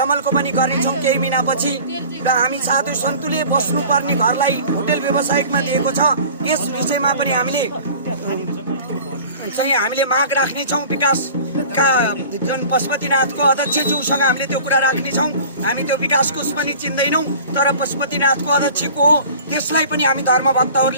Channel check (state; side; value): inverted; both; correlation -0.43